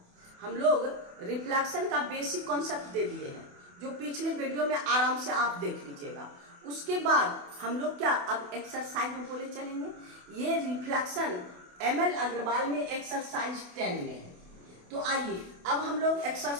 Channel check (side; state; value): left; late; 28 ms